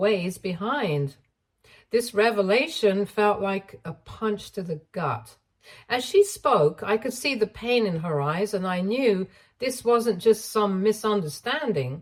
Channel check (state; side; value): identical; both; correlation 1.00